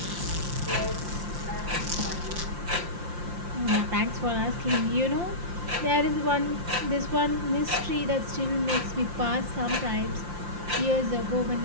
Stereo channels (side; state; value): left; late; 5.7 ms